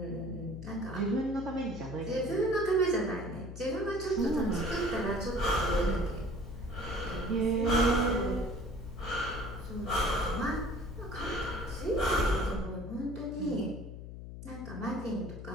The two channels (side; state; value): left; noise; hum, 10 dB below the sound